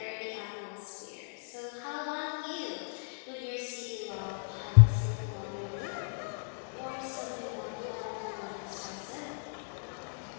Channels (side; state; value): right; silent; digital silence